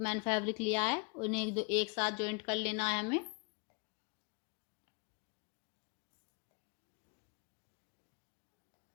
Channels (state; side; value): quieter; right; 33.4 dB